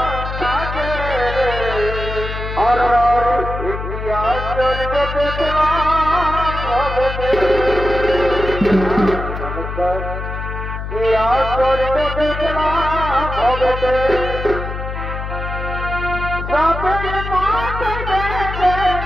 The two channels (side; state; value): left; noise; hum, 6 dB below the sound